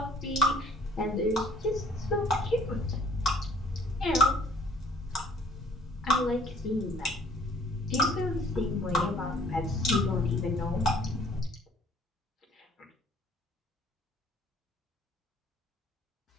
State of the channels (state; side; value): normal; both; correlation 0.57